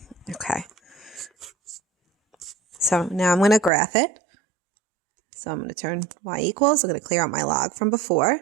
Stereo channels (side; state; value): left; drops out; at 3.7 s